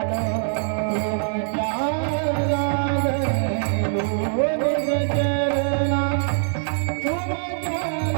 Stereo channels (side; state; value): left; silent; digital silence